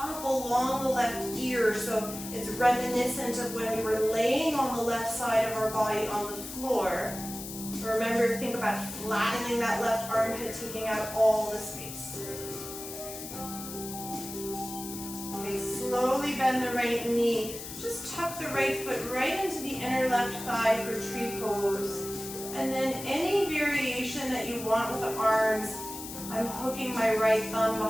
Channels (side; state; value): left; noise; hiss, 10 dB below the sound